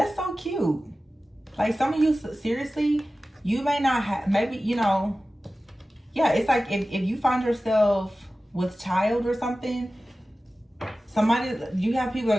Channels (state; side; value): normal; both; correlation 0.96